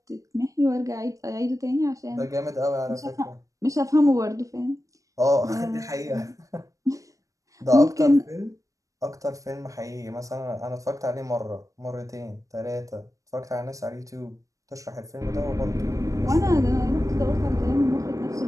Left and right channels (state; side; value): late; left; 0.16 ms